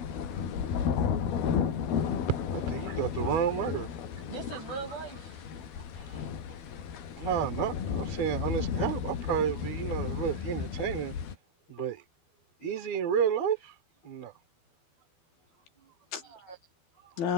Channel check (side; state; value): right; late; 12 ms